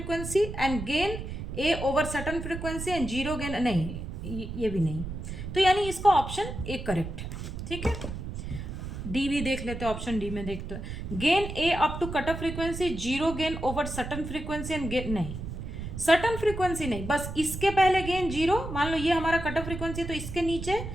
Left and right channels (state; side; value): noise; right; rumble, 7 dB below the sound